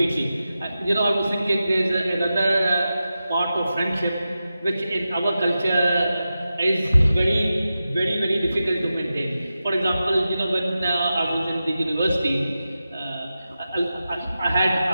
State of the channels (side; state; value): both; inverted; correlation -0.92